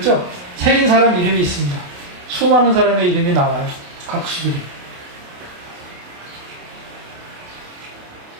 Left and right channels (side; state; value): left; late; 28 ms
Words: 새긴 사람 이름이 있습니다. 수많은 사람의 이름이 나와요. 각수들이.